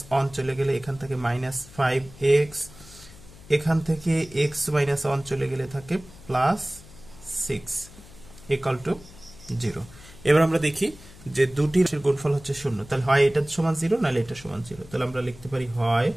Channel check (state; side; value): noise; left; hum, 20 dB below the sound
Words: 1 চলে গেলে এখান থেকে -5x, এখান থেকে x মাইনাস 1 চলে গেলে থাকে প্লাস 6 ইকুয়াল টু 0। এবার আমরা দেখি যে দুটির গুণফল হচ্ছে 0, তাহলে হয় এটা সমান 0 নাহলে এটা সমান 0। তাহলে আমরা লিখতে পারি হয়